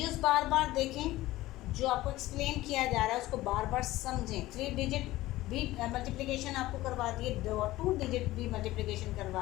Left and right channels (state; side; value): quieter; right; 17.1 dB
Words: बार बार देखें, जो आपको एक्सप्लेन किया जा रहा है उसको बार बार समझें। 3 डिजिट भी मल्टीप्लिकेशन आपको करवा दी है, 2 डिजिट भी मल्टीप्लिकेशन